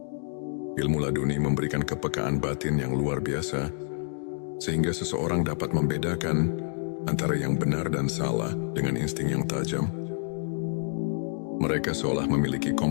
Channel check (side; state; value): right; silent; digital silence